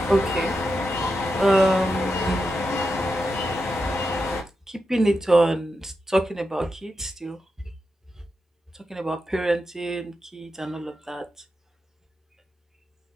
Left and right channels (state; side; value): normal; both; correlation 0.87